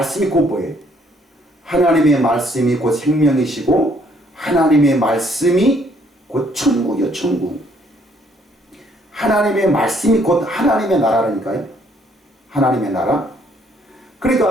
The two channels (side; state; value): both; normal; correlation 0.66